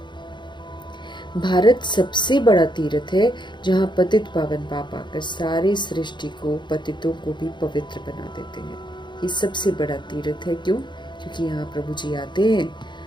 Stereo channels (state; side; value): late; right; 0.22 ms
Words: भारत सबसे बड़ा तीर्थ है जहाँ पतित पावन पाप आकर सारे सृष्टि को, पतितों को भी पवित्र बना देते हैं। ये सबसे बड़ा तीर्थ है। क्यों? क्योंकि यहाँ प्रभु जी आते हैं,